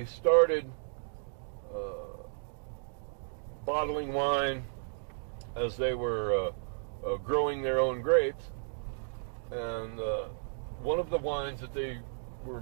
started bottling wine as they were growing their own grapes, and one of the wines that they were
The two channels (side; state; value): left; silent; digital silence